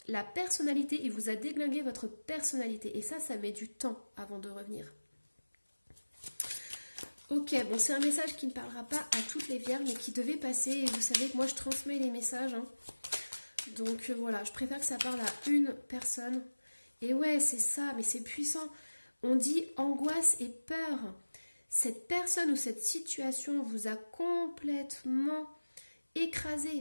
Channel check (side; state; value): both; inverted; correlation -1.00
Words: la personnalité, il vous a déglingué votre personnalité et ça met du temps avant de revenir. Ok, bon, c'est un message qui ne parlera pas à toutes les vierges, mais qui devait passer et vous savez que moi je transmets les messages. Hein. Donc voilà, je préfère que ça parle à une personne. Et ouais, c'est ça, mais c'est puissant. On dit angoisse et peur. Cette personne ou cette situation vous a complètement